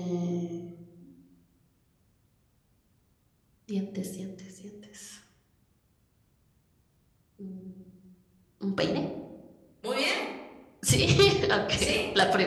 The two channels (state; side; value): identical; both; correlation 1.00